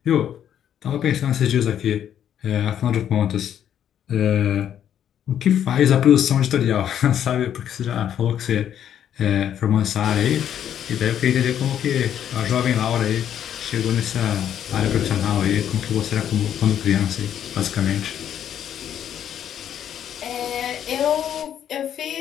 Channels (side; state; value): right; quieter; 9.8 dB